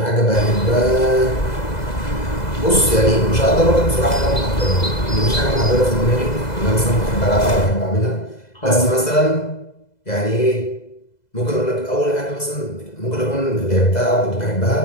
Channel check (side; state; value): right; late; 2.0 ms